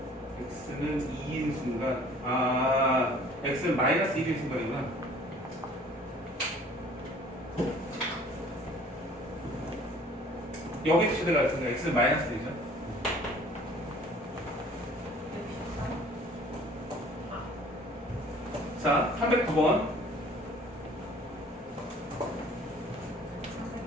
x는 2인 순간 x는 마이너스 1인 순간이구나. 여기서 최대가 있으니까 x는 마이너스 1이죠. 자, 309번.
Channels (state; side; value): normal; both; correlation 0.52